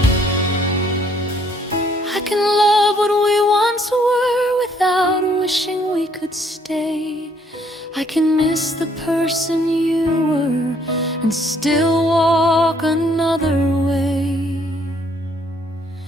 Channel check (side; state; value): both; normal; correlation 0.65